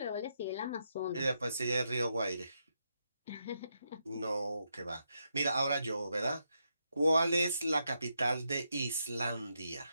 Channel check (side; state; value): both; inverted; correlation -0.82